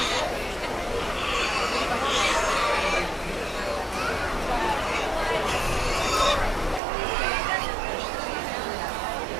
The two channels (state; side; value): drops out; left; at 6.8 s